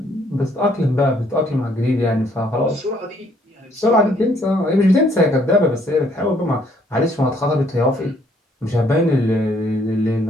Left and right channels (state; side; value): normal; both; correlation 0.65